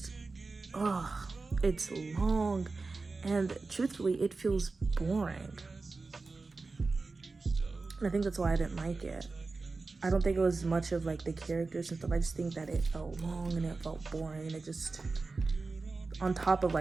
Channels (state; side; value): quieter; left; 3.9 dB